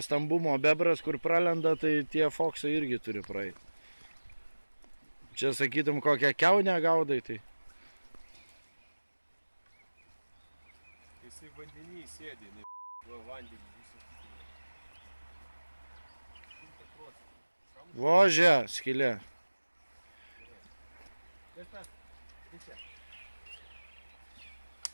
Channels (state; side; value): inverted; both; correlation -1.00